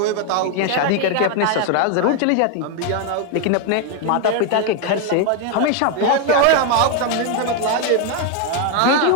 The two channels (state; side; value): different; both; correlation 0.01